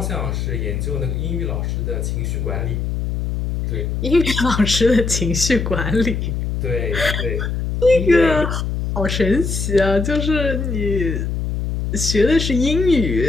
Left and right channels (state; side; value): noise; left; hum, 2 dB below the sound